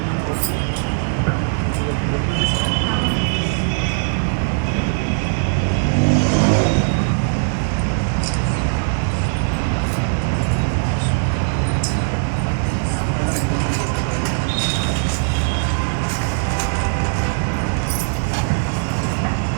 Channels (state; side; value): silent; left; digital silence